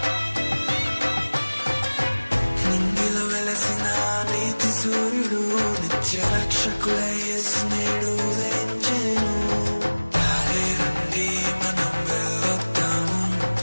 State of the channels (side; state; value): both; inverted; correlation -1.00